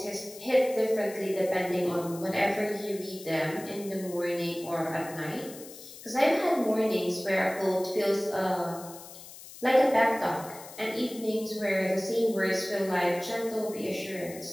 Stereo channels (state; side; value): noise; left; hiss, 16 dB below the sound